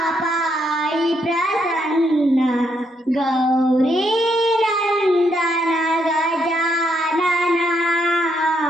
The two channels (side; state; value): both; normal; correlation 0.75